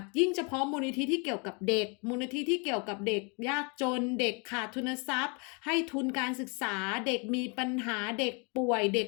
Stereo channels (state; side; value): quieter; right; 33.4 dB